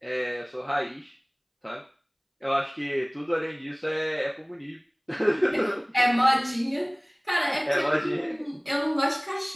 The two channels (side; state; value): both; identical; correlation 1.00